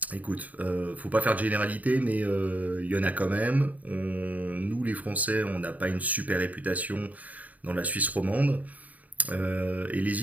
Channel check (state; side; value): late; left; 0.074 ms